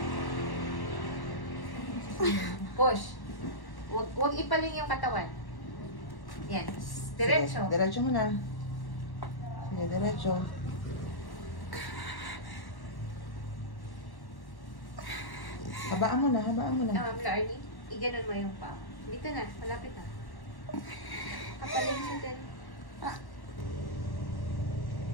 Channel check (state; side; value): late; right; 1.1 ms